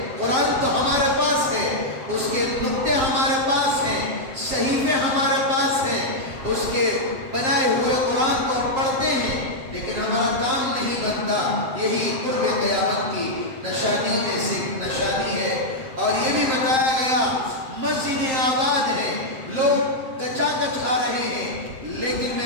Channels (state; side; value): late; left; 7.6 ms